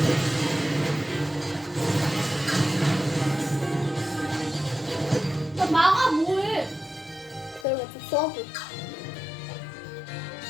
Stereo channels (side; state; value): right; drops out; at 7.7 s